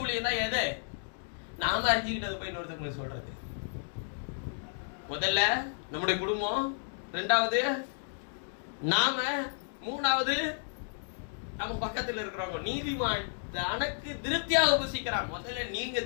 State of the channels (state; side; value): silent; right; digital silence